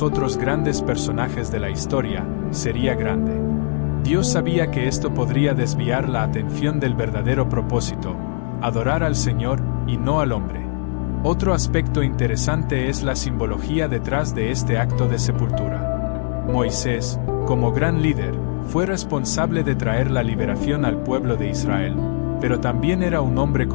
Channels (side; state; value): right; silent; 65 dB below the other